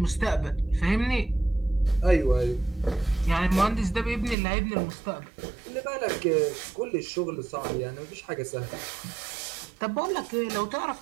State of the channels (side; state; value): left; drops out; at 4.4 s